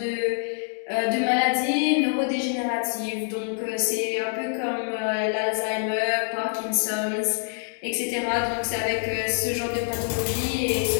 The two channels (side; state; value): right; silent; digital silence